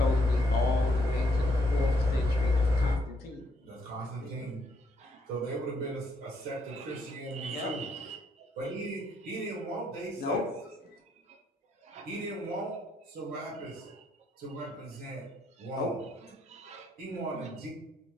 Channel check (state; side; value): normal; both; correlation 0.73